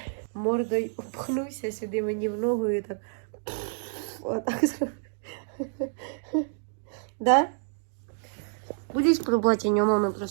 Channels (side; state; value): left; silent; digital silence